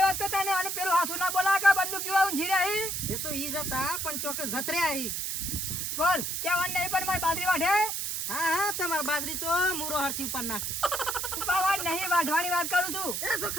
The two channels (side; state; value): right; noise; hiss, 2 dB below the sound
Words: હોત તો તને અને પેલું હાસુ ના બોલા કે બંદૂક જેવા ઊંઘી રહી. એ તો ઈ જતા પણ ચોકે જતર્યા ઈ બોલ કેવાનું નહીં પણ મારી બાજરી વાઢે હા તમાર બાજરી તો મૂરો હરથી ઉપર નાખી ઉપાવા નહીં વાઢવાની વાત કરું છું. એ